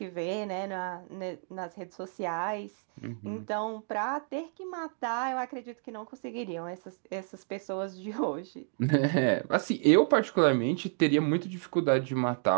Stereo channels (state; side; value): silent; left; 57 dB below the other